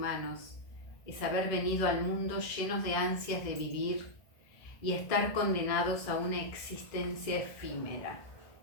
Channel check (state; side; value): late; right; 1.6 ms